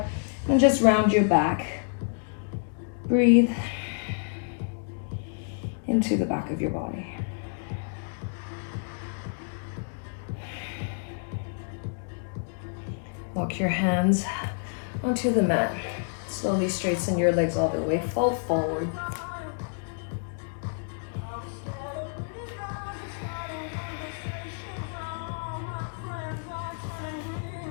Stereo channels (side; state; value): right; silent; digital silence